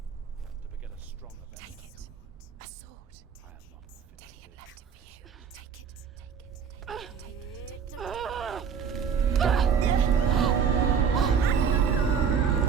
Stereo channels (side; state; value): left; quieter; 6.9 dB